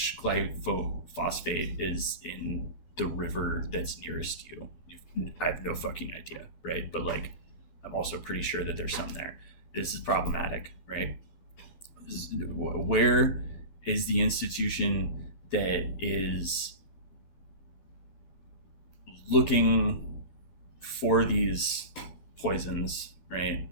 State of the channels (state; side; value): late; right; 12 ms